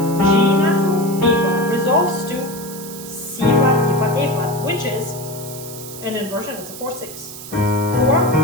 G natural, B flat resolves to C flat, E flat, A flat, which is an inversion. It's a 4/6. 4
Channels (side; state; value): right; noise; hiss, 13 dB below the sound